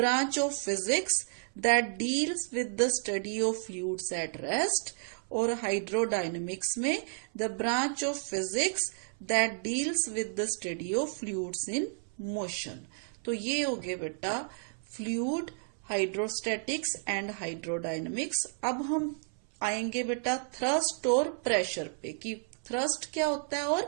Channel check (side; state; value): left; silent; 57 dB below the other